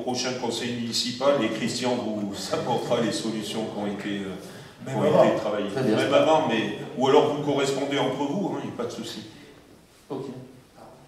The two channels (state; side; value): identical; both; correlation 1.00